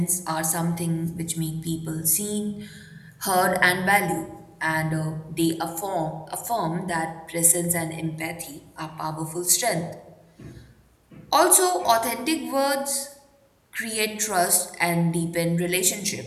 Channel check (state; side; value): identical; both; correlation 1.00